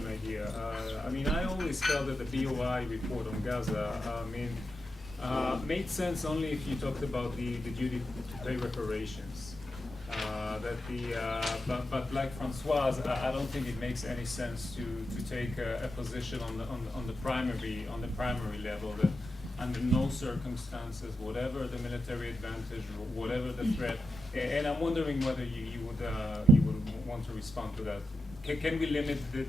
idea. I always felt that the BOI report on Gaza made sense only if you talked about the duty to pay reparations. But like François, I don't think it makes any sense to take a position on the primary level that under no circumstances, whatever the military advantage, whatever the threat, and I'm wondering whether you would want to respond to that. Can we limit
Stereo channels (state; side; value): normal; both; correlation 0.88